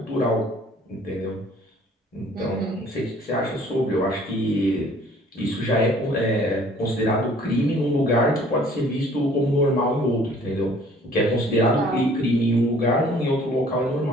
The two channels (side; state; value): both; normal; correlation 0.55